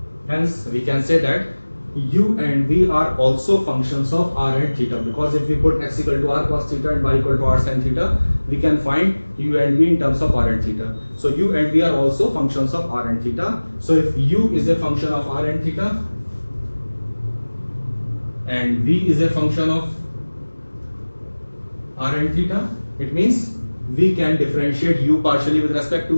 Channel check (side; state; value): both; inverted; correlation -1.00